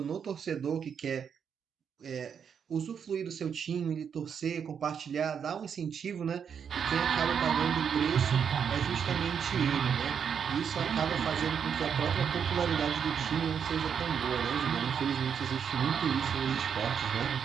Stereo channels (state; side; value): quieter; left; 7.3 dB